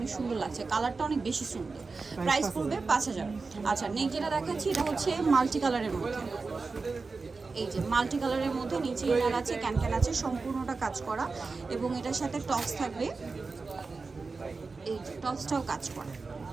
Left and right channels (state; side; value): quieter; left; 4.2 dB